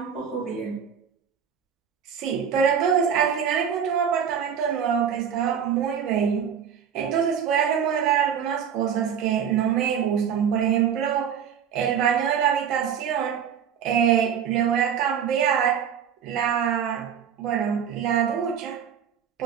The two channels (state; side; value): quieter; left; 8.1 dB